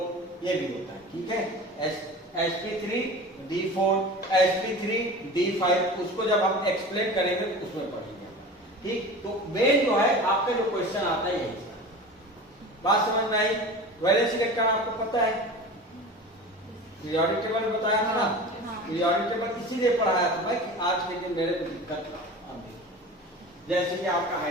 ये भी होता है। ठीक है, sp3d4, sp3d5, उसको जब हम एक्सप्लेन करेंगे तो उसमें पढ़ेंगे। ठीक, तो मेन जो है आपका जो क्वेश्चन आता है यही, बात समझ में आई। वैलेंस इलेक्ट्रॉन आपको पता है, पीरियोडिक टेबल बताया था ना, पीरियोडिक टेबल इसीलिए पढ़ाया था मैं कि आज के दिन मेरे को दिक्कत जैसे कि आपका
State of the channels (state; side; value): normal; both; correlation 0.35